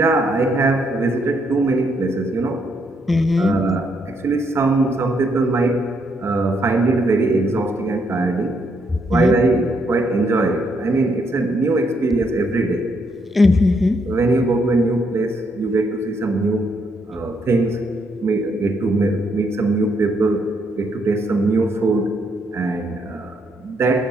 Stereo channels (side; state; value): both; normal; correlation 0.75